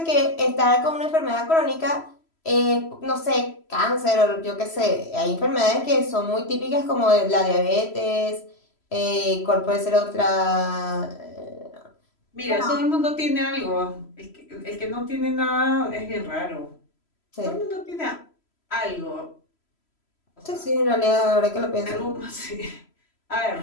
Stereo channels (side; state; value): right; late; 3.0 ms